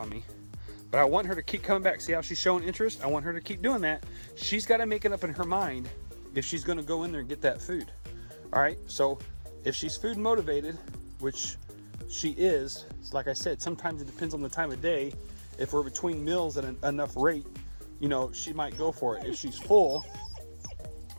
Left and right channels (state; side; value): inverted; both; correlation -1.00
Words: me, but I want her to keep coming back. See how she's showing interest? I want her to keep doing that. She's gotta make it up in her mind if she's gonna go in there and get that food. All right, so if she's food motivated, which she is, like I said, sometimes it depends on the time of day. If we're between meals at enough rate, you know, she might go for it. If she's full,